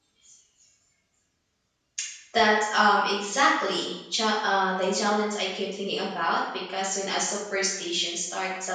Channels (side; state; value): both; identical; correlation 1.00